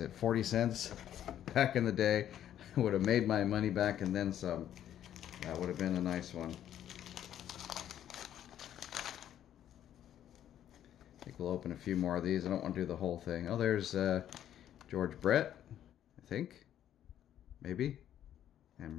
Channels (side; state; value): right; quieter; 10.9 dB